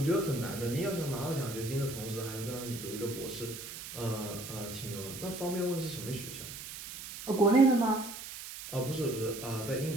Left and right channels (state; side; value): noise; right; hiss, 10 dB below the sound